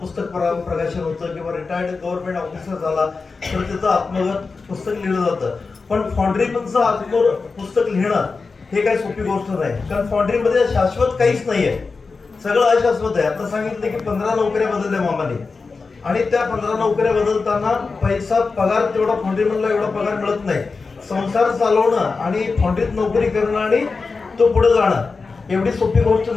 प्रकाशन होतं किंवा रिटायर्ड गव्हर्नमेंट ऑफिसर झाला तर त्याचं आत्मगत पुस्तक लिहिलं जातं. पण फॉन्ड्रीमनचं पुस्तक लिहिणं हे काही सोपी गोष्ट नाही, कारण फॉन्ड्रीमध्ये शाश्वत काहीच नाहीये, सगळं अशाश्वत आहे. आता सांगितलं की 15 नोकऱ्या बदलल्या मामाने, आणि त्या 15 नोकऱ्या बदलताना पैसा पगार तेवढा फॉन्ड्रीमनला एवढा पगार मिळत नाही. संसार चालवणं आणि फॉन्ड्रीत नोकरी करणं आणि तो पुढे जाणं एवढी सोपी गोष्ट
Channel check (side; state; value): right; quieter; 4.4 dB